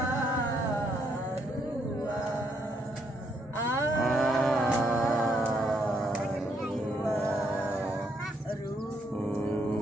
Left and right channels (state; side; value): normal; both; correlation 0.74